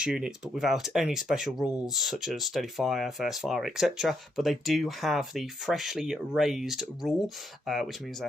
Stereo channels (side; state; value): both; normal; correlation 0.77